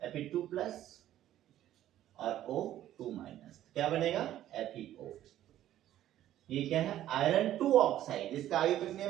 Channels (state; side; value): quieter; left; 12.6 dB